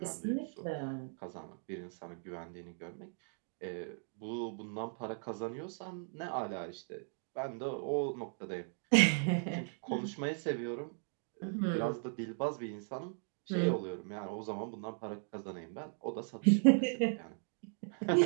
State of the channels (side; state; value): left; silent; 53 dB below the other